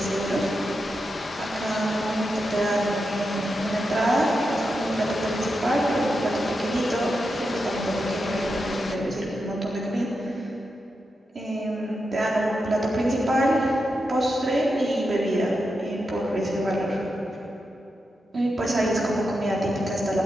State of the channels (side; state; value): both; normal; correlation 0.87